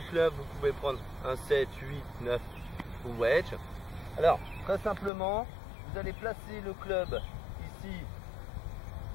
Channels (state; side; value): drops out; right; at 5.1 s